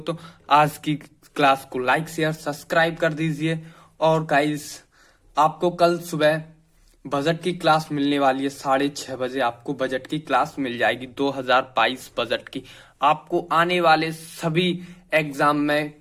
आज की क्लास को लाइक शेयर सब्सक्राइब कर दीजिए। और गाइस आपको कल सुबह बजट की क्लास मिलने वाली है। 6:30 बजे आपको बजट की क्लास मिल जाएगी। 2022 बजट की आपको आने वाले सभी एग्जाम में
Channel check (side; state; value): both; identical; correlation 1.00